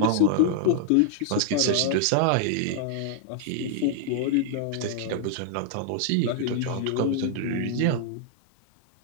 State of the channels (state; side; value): different; both; correlation 0.00